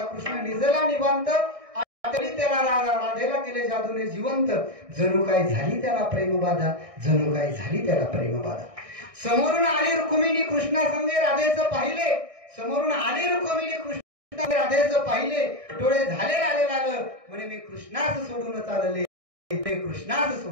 कृष्ण निजला निवांत आठवली त्याला राधा, राधेला केले जादूने जिवंत, जणू काय झाली त्याला प्रेमबाधा, जणू काय झाली त्याला प्रेमबाधा. समोरून आली रुक्मिणी कृष्णा संगे राधेचं पाहिले, समोरून आली रुक्मिणी कृष्णा राधेचं पाहिले, डोळे झाले लाले लाल, म्हणे मी कृष्णास सोडून चालले, कृष्णास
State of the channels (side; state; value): left; late; 1.6 ms